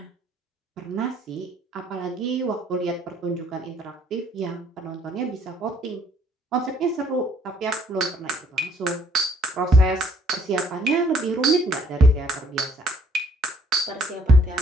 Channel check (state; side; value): normal; both; correlation 0.63